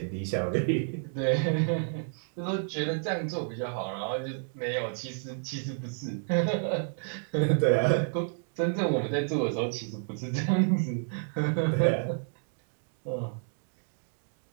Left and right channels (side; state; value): left; silent; digital silence